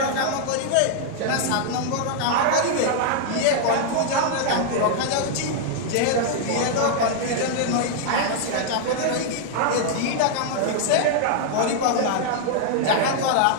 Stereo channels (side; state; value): both; different; correlation -0.01